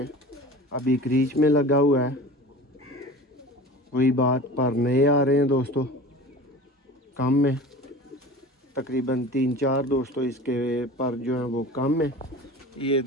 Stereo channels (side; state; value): both; normal; correlation 0.37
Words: अभी क्रीच में लगा हुआ है, वही बात पर नए आ रहे हैं दोस्तों कम में, तकरीबन 3-4 दोस्तों इसके पर जो है वो कम है। ये